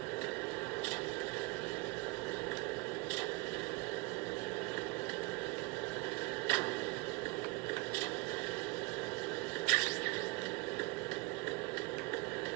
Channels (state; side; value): quieter; left; 24.2 dB